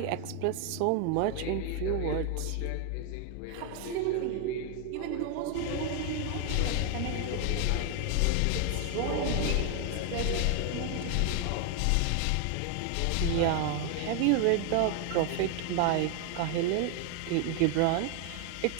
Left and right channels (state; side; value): different; both; correlation 0.01